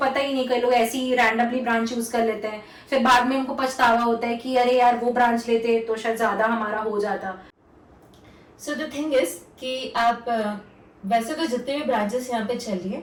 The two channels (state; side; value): identical; both; correlation 1.00